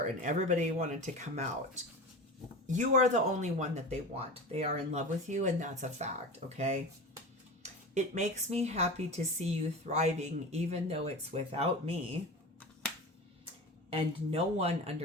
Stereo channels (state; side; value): normal; both; correlation 0.30